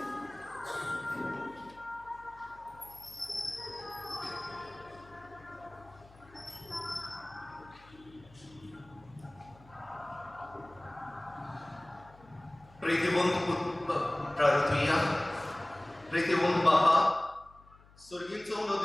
प्रीतिवंत प्रार्थुया. प्रीतिवंत बापा, सुर्गीचो उडो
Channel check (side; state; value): left; noise; hum, 25 dB below the sound